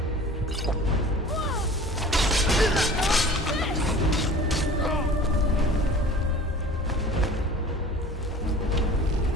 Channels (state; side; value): normal; both; correlation 0.43